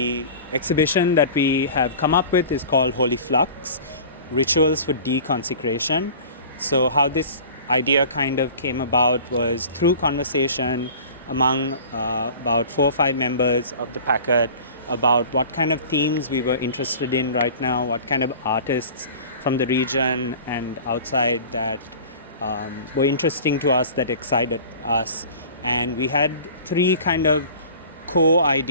exhibition that we have come up with is called Holy Flux Rituals for Deconsecration. So, how this idea kind of came about was through conversation among about 4 or 5 members of the packet about what kind of themes we were interested in right now, what kind of artists from the region and outside that were interesting to us, that excited us. And we had 3 kind of core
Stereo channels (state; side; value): inverted; both; correlation -0.41